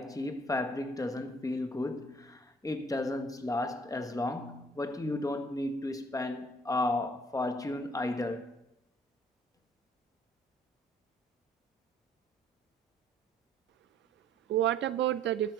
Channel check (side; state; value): both; normal; correlation 0.59